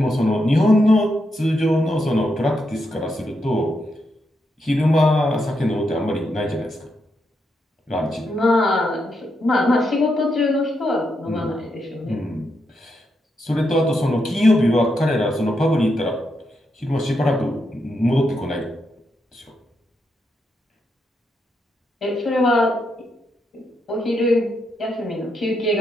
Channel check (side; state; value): both; normal; correlation 0.82